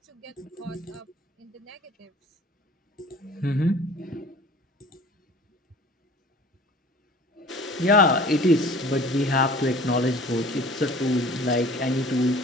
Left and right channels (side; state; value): both; normal; correlation 0.46